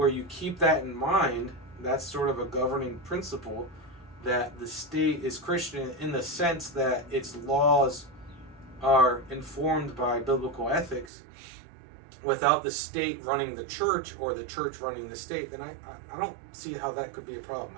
you keep that in mind, that's sort of a governing principle, that the state is Christian in the sense that its laws are informed by biblical ethics, without the state running the church or the church running the state, then I don't see how that could be a problem.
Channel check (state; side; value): drops out; left; at 11.1 s